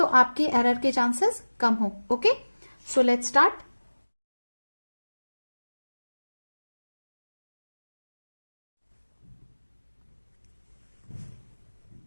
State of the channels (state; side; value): inverted; both; correlation -1.00